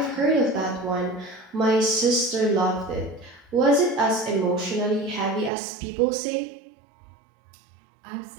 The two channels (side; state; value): left; drops out; at 5.5 s